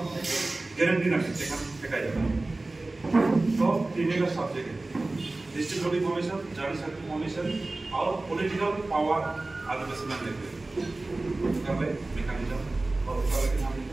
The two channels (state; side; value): quieter; left; 3.0 dB